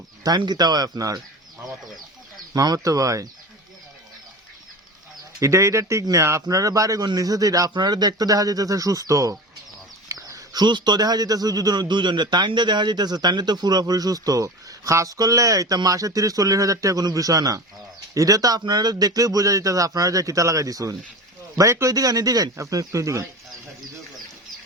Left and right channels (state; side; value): normal; both; correlation 0.31